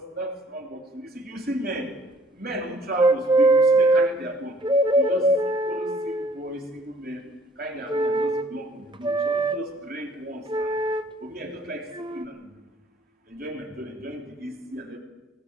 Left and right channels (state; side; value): normal; both; correlation 0.57